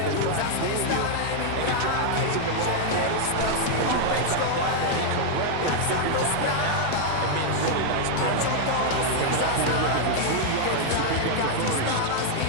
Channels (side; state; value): both; different; correlation 0.00